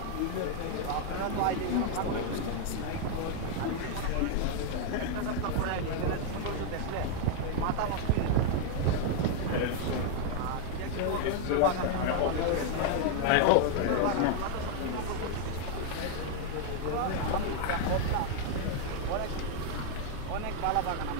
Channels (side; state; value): both; different; correlation 0.00